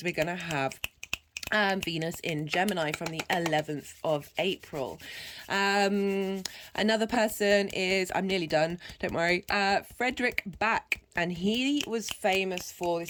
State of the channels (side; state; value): both; identical; correlation 1.00